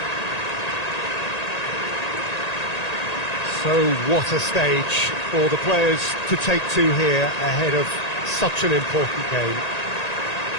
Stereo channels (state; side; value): late; right; 1.8 ms